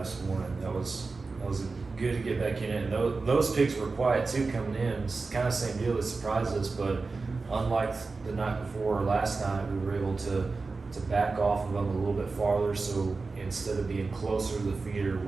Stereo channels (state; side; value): quieter; left; 4.0 dB